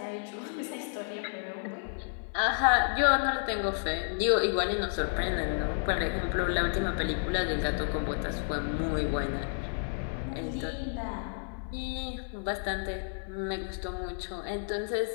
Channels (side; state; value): right; silent; 57 dB below the other